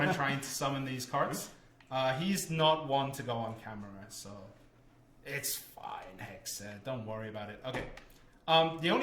trying to summon these carts. He's not one to go on camera, so it's fine, Hexa. Don't worry about it. Okay. The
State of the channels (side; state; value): both; identical; correlation 1.00